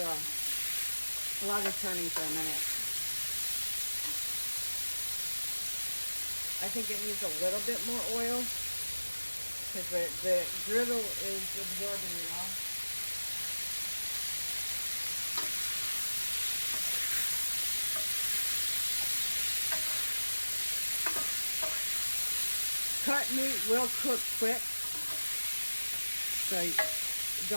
lot of turning for a minute. I think it needs a little bit more oil because the griddle is absorbing it all. Cut meat will cook quick, so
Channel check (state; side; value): inverted; both; correlation -1.00